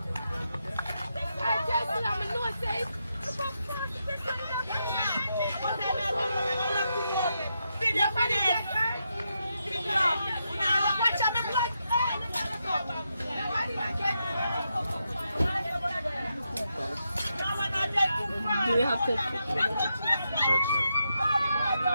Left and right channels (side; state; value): both; inverted; correlation -0.84